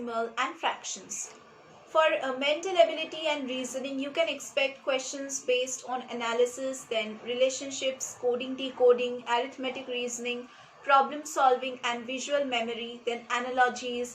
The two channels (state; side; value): identical; both; correlation 1.00